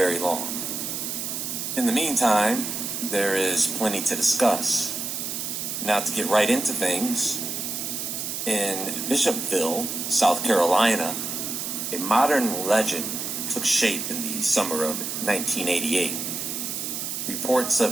long. In the meantime, there is plenty to discuss. Now to get right into things, in Bishopville, South Carolina, a modern legend took shape in the summer of 1988. Reports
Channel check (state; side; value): noise; right; hiss, 4 dB below the sound